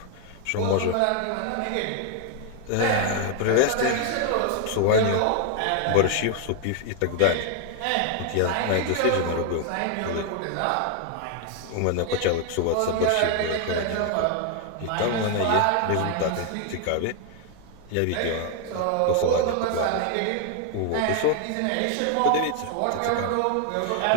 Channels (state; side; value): different; both; correlation 0.01